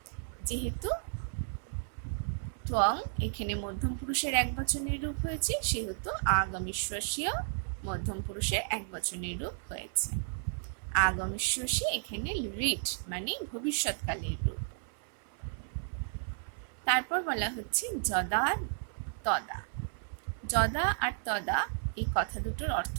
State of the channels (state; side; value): silent; left; 56 dB below the other